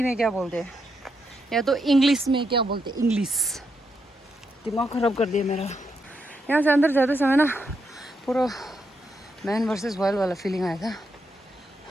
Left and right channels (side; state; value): both; normal; correlation 0.81